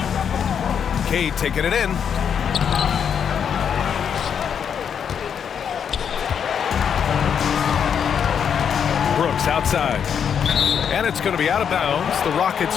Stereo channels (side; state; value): right; quieter; 7.7 dB